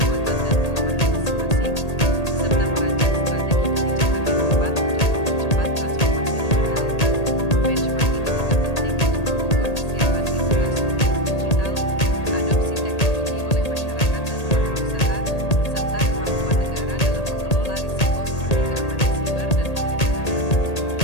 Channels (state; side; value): late; right; 1.8 ms